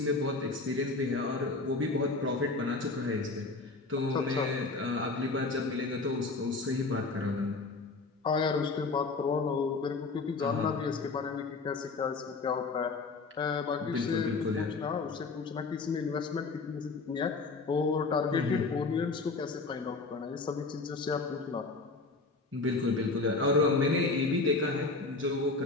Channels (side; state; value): right; quieter; 3.8 dB